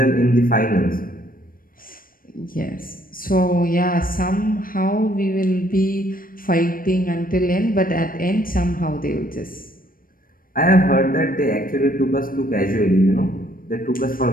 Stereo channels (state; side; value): late; right; 0.41 ms